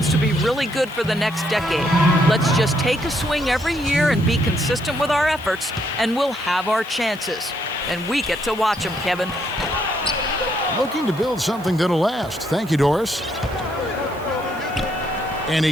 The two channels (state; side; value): noise; right; hiss, 23 dB below the sound